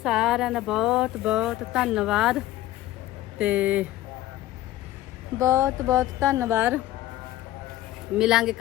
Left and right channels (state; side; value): quieter; right; 15.2 dB